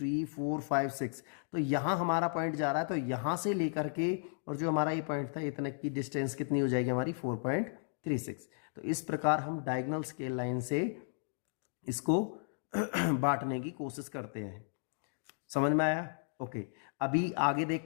4 5 6। तो यहाँ हमारा पॉइंट जा रहा है, तो यहाँ से लेकर के और जो हमारा ये पॉइंट था इतने की डिस्टेंस कितनी हो जाएगी हमारी, 4.36। तो इस प्रकार हम डायगोनल स्केल लाइन से इसको बांटने की कोशिश करते हैं। समझ में आया? ओके, अभी आगे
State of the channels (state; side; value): silent; right; digital silence